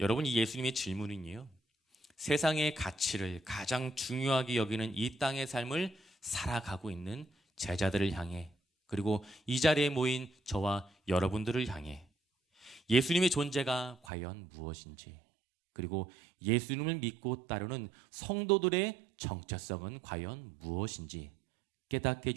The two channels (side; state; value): left; drops out; at 14.0 s